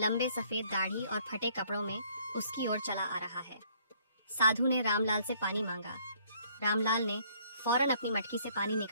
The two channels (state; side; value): inverted; both; correlation -0.63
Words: सफेद दाढ़ी और फटे कपड़ों में उसकी ओर चला आ रहा है। साधु ने रामलाल से पानी मांगा। रामलाल ने फौरन अपनी मटकी से पानी